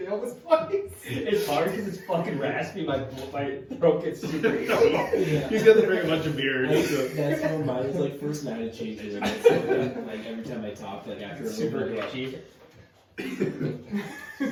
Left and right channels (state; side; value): identical; both; correlation 1.00